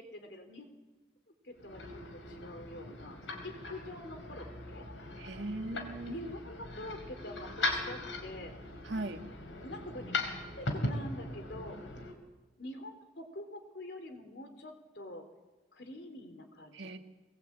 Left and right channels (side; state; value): both; normal; correlation 0.42